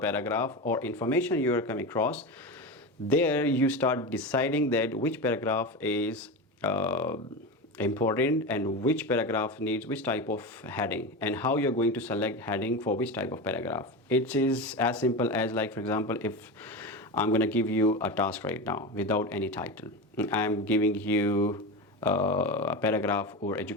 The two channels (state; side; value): normal; both; correlation 0.22